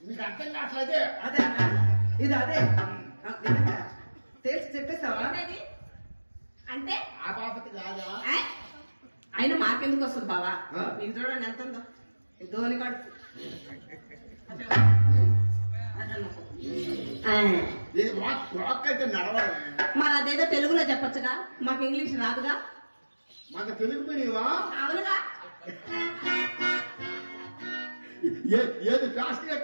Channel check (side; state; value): both; inverted; correlation -1.00